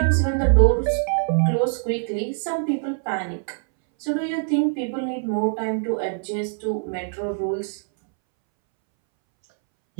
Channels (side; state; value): left; silent; 63 dB below the other